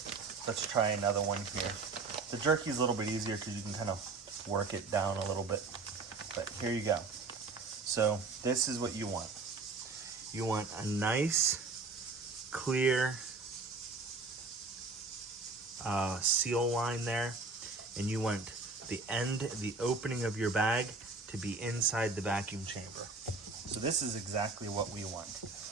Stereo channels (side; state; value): left; quieter; 3.9 dB